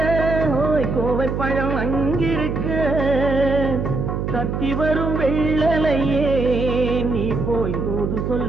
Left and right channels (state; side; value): noise; right; hum, 2 dB below the sound